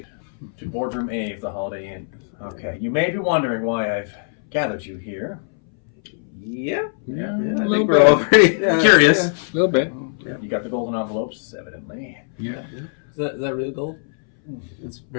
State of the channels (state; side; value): silent; right; 62 dB below the other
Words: to Boardroom A of the Holiday Inn. Okay, you may be wondering why I've gathered you here. Yeah. I think we're all pretty curious. Yeah, a little bit. Yeah, you got the golden envelopes, evidently. Yeah. Is that real gold? It's